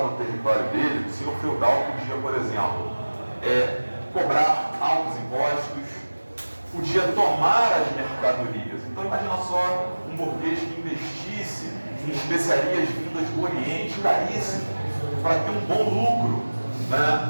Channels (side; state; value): both; inverted; correlation -1.00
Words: no território dele, o senhor feudal podia, por exemplo, cobrar altos impostos, podia tomar as mercadorias. Então imagina só um burguês que investisse em especiarias vindas do Oriente, caríssimo, para ter um bom lucro,